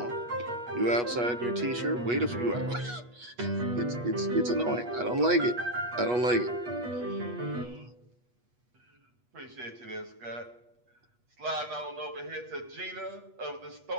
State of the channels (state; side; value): late; left; 8.3 ms